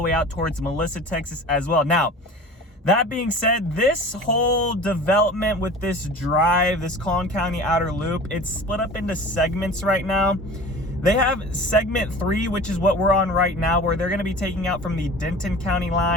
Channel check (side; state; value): both; normal; correlation 0.39